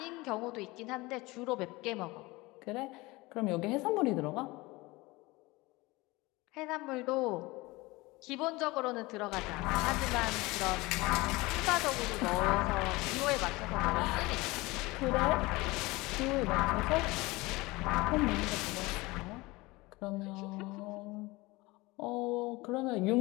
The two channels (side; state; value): right; quieter; 22.1 dB